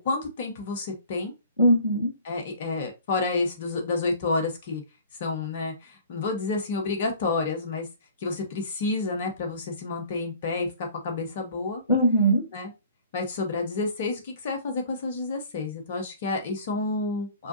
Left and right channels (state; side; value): inverted; both; correlation -0.49